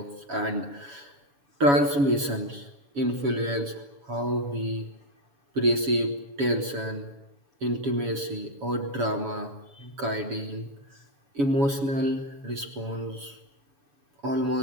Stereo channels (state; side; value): late; left; 7.1 ms